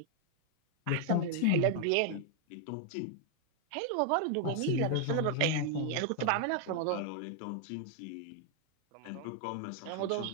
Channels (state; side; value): different; both; correlation 0.00